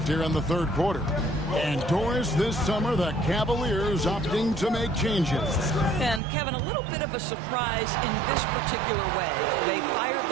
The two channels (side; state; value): left; drops out; at 6.2 s